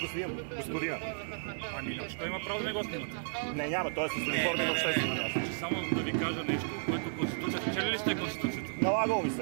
снимам, господина. Ами, ще има право да не го снимате. Не, няма, той е с униформи на обществено място. Само да ви кажа нещо, което Конституцията. Чели ли сте Конституцията? Налагало ми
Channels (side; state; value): left; silent; digital silence